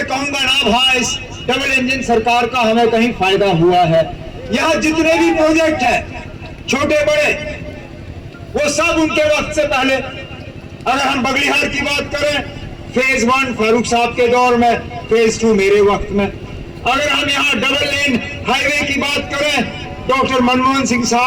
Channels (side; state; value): both; identical; correlation 1.00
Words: कहूंगा ना भाई इस डबल इंजन सरकार का हमें कहीं फायदा हुआ है। यहाँ जितने भी प्रोजेक्ट हैं छोटे बड़े, वो सब उनके वक्त से पहले। अगर हम बगलिहार की बात करें, फेज 1 फारूक साहब के दौर में, फेज 2 मेरे वक्त में। अगर हम यहाँ डबल लेन हाईवे की बात करें, डॉक्टर मनमोहन सिंह